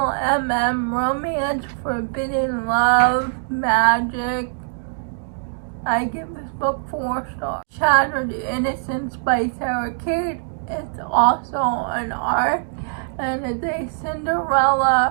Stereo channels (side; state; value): left; silent; digital silence